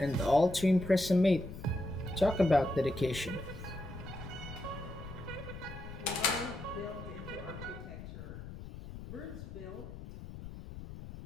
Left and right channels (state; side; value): noise; left; rumble, 11 dB below the sound